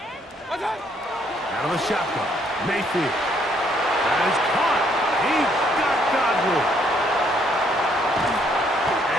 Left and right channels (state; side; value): normal; both; correlation 0.68